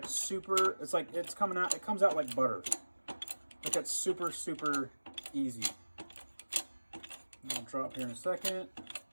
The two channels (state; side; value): inverted; both; correlation -1.00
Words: super, it's like it's coming out, it comes out like butter. Like it's super, super easy. I'm gonna drop here in a second.